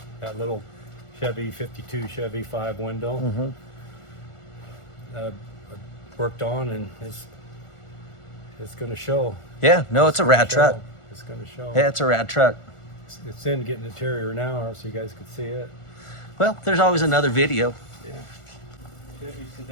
that little Chevy 52 Chevy 5 window. I worked on, and it's going to show. Yeah, no, it's a rad truck. It's going to show. Yeah, it's a rad truck. It's in getting interior now, so you guys can see it. Well, there's always another video. Yeah. Chevy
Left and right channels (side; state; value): right; late; 1.4 ms